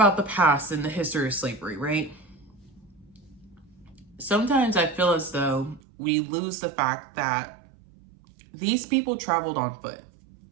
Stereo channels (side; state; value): left; drops out; at 5.8 s